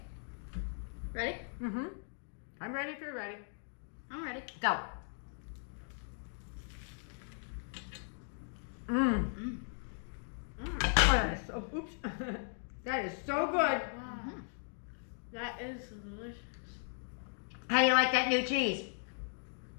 Ready? Mm-hmm. I'm ready if you're ready. I'm ready. Go. Mmm. Oh, that is so, oops. That is so good. Wow. That is delicious. How do you like that new cheese?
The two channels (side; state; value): right; silent; 53 dB below the other